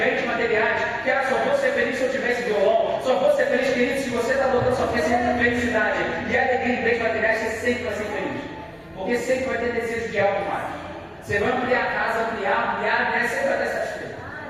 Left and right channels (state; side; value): identical; both; correlation 1.00